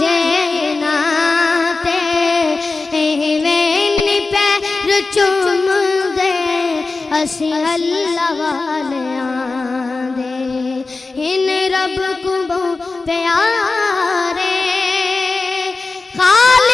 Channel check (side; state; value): right; quieter; 3.7 dB